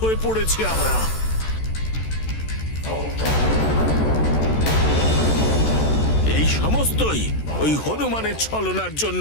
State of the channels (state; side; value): late; right; 14 ms